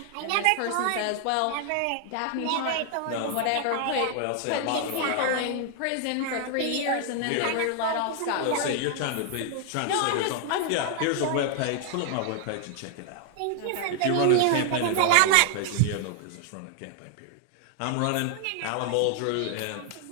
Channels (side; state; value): both; different; correlation 0.00